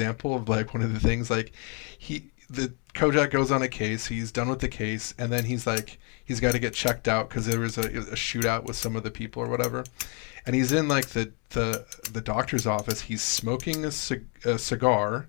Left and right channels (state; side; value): quieter; right; 35.0 dB